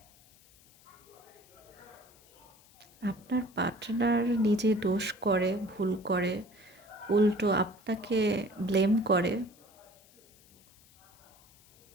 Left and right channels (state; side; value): noise; left; hiss, 27 dB below the sound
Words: আপনার পার্টনার নিজে দোষ করে, ভুল করে, উল্টো আপনাকে ব্লেম করে।